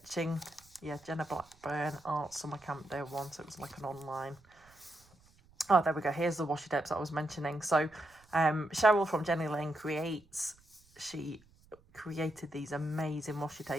Yeah, Jenna Blackburn Art Summer Camp Day 1, so it was like an online. Oh, there we go. Here's the washi tapes that I was mentioning. So Cheryl from Jenny Lane Creates, she created these amazing washi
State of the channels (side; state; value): right; noise; rumble, 29 dB below the sound